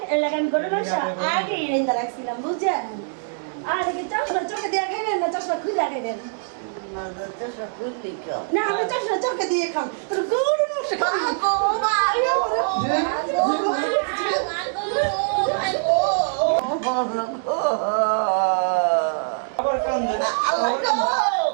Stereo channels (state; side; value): silent; left; digital silence